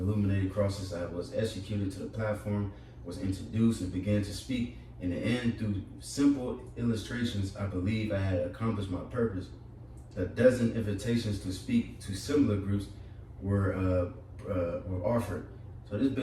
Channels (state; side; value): identical; both; correlation 1.00